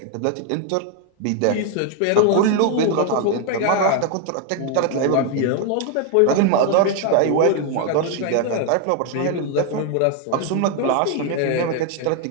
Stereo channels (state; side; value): different; both; correlation 0.01